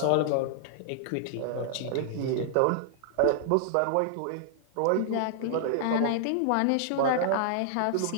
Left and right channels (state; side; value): different; both; correlation -0.01